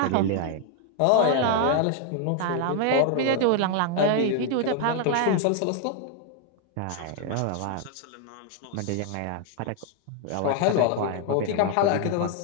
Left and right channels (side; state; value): both; different; correlation 0.00